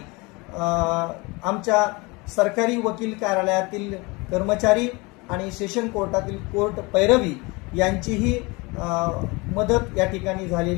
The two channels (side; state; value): right; quieter; 25.8 dB